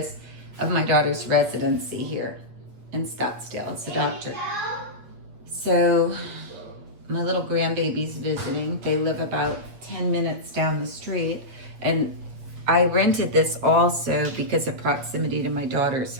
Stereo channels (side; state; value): left; late; 8.1 ms